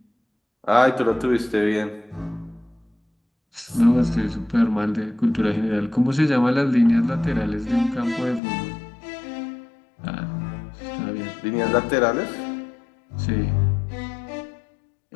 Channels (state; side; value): drops out; right; at 8.4 s